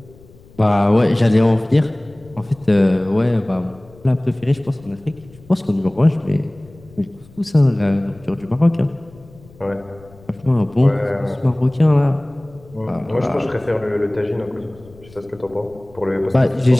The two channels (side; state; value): left; noise; rumble, 24 dB below the sound